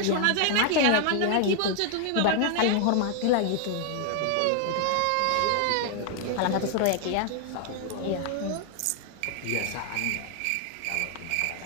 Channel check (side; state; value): both; different; correlation 0.00